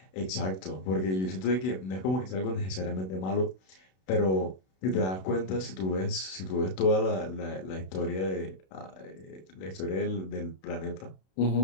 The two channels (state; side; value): late; right; 32 ms